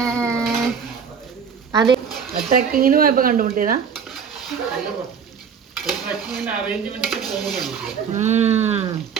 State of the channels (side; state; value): left; quieter; 6.8 dB